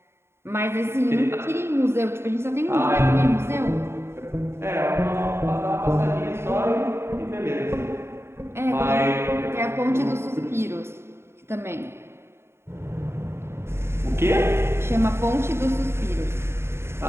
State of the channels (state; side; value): late; left; 0.12 ms